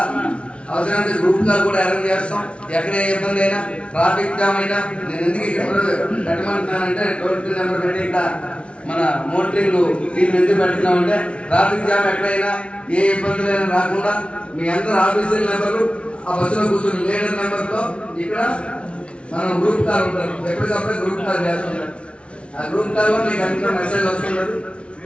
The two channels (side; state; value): right; late; 0.060 ms